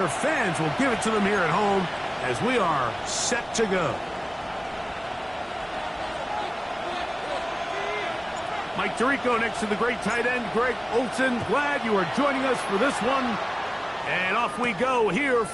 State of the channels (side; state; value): both; identical; correlation 1.00